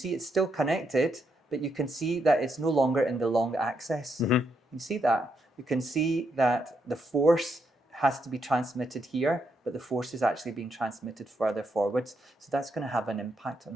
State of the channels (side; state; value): both; normal; correlation 0.79